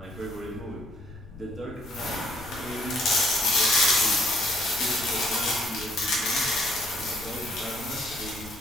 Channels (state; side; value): noise; left; rumble, 17 dB below the sound